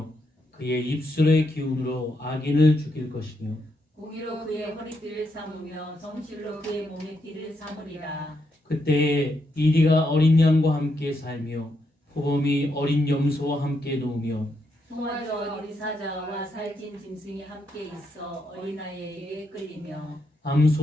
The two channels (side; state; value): both; normal; correlation 0.80